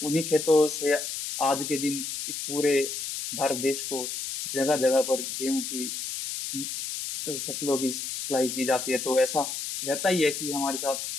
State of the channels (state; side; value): noise; left; hiss, 5 dB below the sound